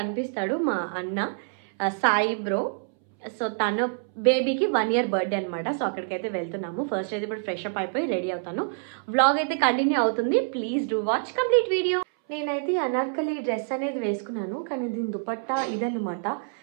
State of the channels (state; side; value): silent; left; 61 dB below the other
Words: మా అన్న సాయి బ్రో. సో తన బేబీకి 1 year బర్త్డే అనమాట. సో అక్కడికైతే వెళ్తున్నాము. ఫస్ట్ అయితే ఇప్పుడు ఫ్రెష్ అప్ అయిపోయి రెడీ అవుతాను. వ్లాగ్ అయితే కంటిన్యూ అవుతుంది. Please do watch complete video. నేనైతే అనార్కలి డ్రెస్ అనేది వేసుకున్నాను, కానీ దీని దుపట్టా ఇదన్నమాట.